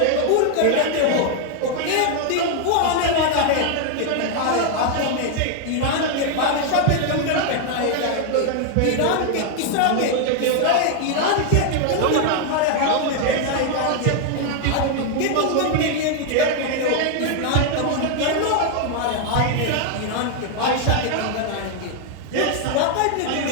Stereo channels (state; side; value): different; both; correlation 0.00